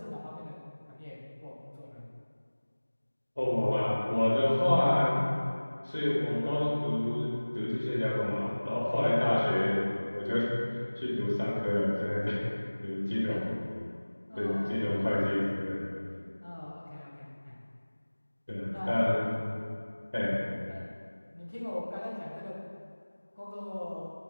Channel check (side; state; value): both; inverted; correlation -1.00